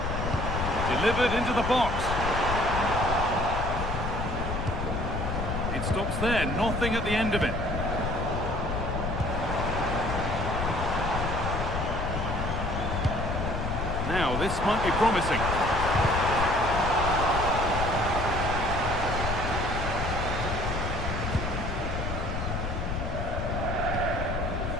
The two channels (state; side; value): noise; left; rumble, 3 dB below the sound